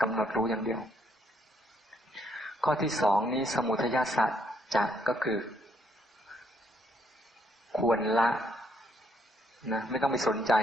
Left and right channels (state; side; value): normal; both; correlation 0.71